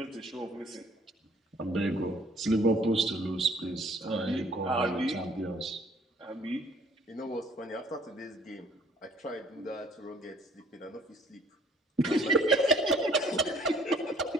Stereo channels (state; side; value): normal; both; correlation 0.58